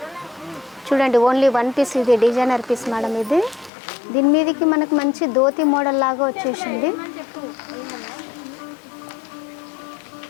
చూడండి ఓన్లీ 1 పీస్. ఇది డిజైనర్ పీస్ మేడం. ఇది దీని మీదకి మనకు మంచి ధోతి మోడల్ లాగా వచ్చేసింది.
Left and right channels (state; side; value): drops out; right; at 3.7 s